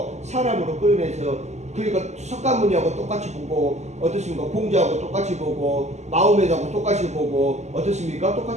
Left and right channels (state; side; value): late; left; 0.33 ms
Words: 사람으로 끌어내서, 그러니까 석가모니하고 똑같이 보고, 어떻습니까? 공자하고 똑같이 보고, 마호메트하고 똑같이 보고, 어떻습니까?